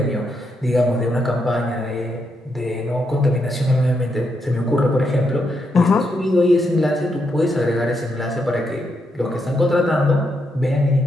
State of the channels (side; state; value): both; normal; correlation 0.80